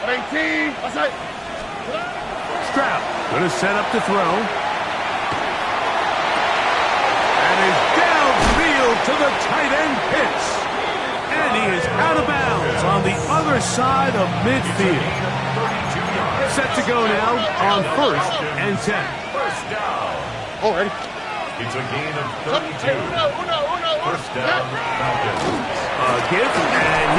18. Outside. Stroud going to set up to throw. And is downfield to the tight end Pitts. And he is out of bounds on the other side of midfield. Set to go now on 1st and 10. 1st down. Already. It's a gain of 32. 1st down, Falcons. A give,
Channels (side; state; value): both; identical; correlation 1.00